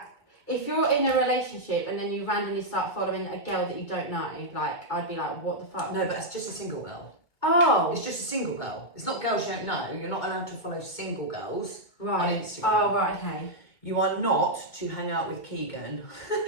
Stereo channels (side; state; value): right; late; 2.2 ms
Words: If you're in a relationship and then you randomly start following a girl that you don't know, like I'd be like, what the fuck? No, but it's just a single girl. Oh, It's just a single girl. It's not girls you don't know. You're not allowed to follow single girls right. on Instagram. Oh, right, okay. You are not to hang out with Keegan,